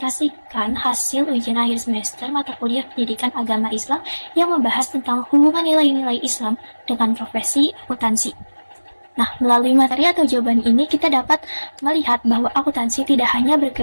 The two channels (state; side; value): inverted; both; correlation -1.00